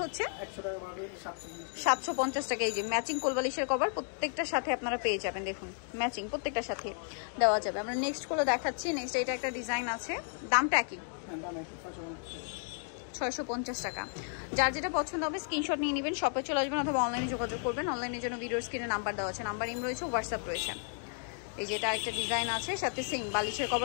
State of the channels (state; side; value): silent; right; 56 dB below the other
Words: হচ্ছে 750 টাকা। এই যে ম্যাচিং কোল বালিশের কভার প্রত্যেকটার সাথে আপনারা পেয়ে যাবেন। দেখুন ম্যাচিং প্রত্যেকটার সাথে দেওয়া যাবে। আমরা নেক্সট গুলো দেখাচ্ছি। নেক্সট এটা একটা ডিজাইন আছে, দামটা কি? 650 টাকা। যার যেটা পছন্দ হবে স্ক্রিনশট নিয়ে নেবেন, শপে চলে আসবেন অথবা অনলাইনে যোগাযোগ করবেন। অনলাইনের জন্য ভিডিওর স্ক্রিনে নাম্বার দেওয়া আছে, নাম্বার ইম রয়েছে, হোয়াটসঅ্যাপ রয়েছে। এই যে এটা একটা ডিজাইন আছে, সাথে সেম বালিশের